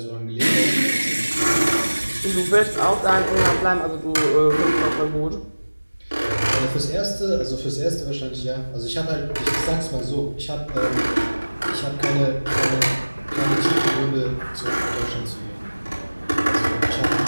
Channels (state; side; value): inverted; both; correlation -1.00